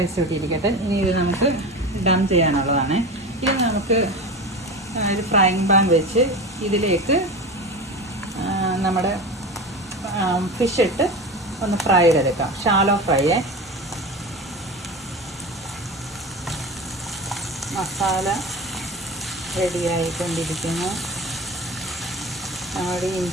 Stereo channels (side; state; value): both; normal; correlation 0.28